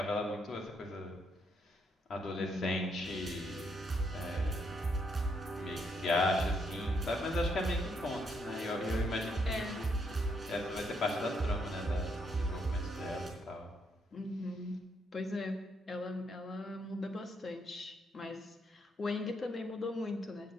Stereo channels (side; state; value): both; normal; correlation 0.75